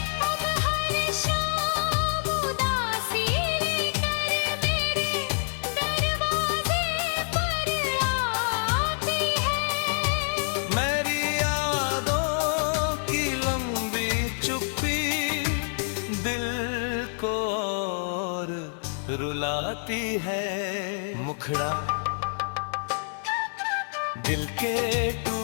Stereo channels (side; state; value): right; silent; 60 dB below the other